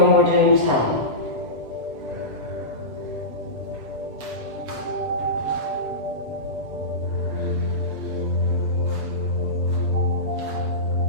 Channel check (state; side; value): late; left; 7.9 ms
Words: we're doing 10.